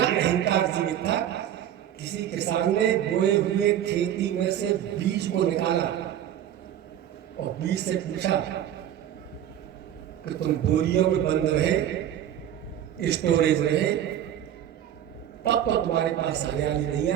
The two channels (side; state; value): left; quieter; 10.8 dB